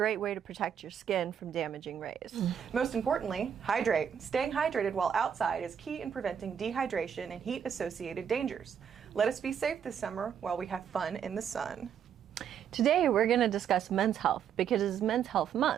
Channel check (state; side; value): quieter; left; 8.2 dB